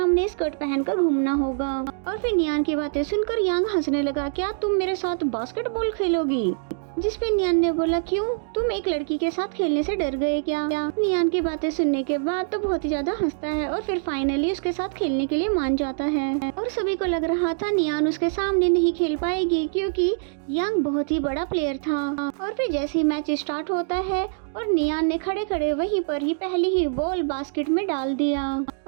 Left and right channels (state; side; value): silent; left; digital silence